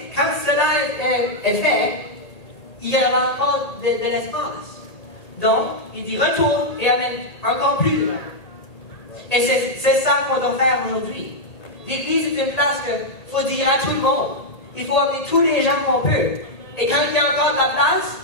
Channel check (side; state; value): right; late; 1.8 ms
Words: est fait, il y aura encore de l'espace. Donc, il dit retourne et amène encore plus de gens. Et c'est ça qu'on doit faire aujourd'hui. L'Église est une place qu'il faut dire à tout le monde. Il faut amener tous les gens qu'on peut. Et quand il y a encore de la place,